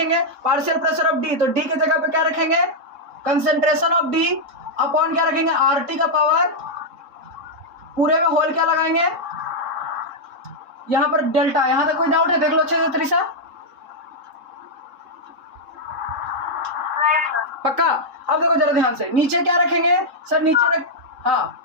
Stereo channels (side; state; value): left; late; 3.7 ms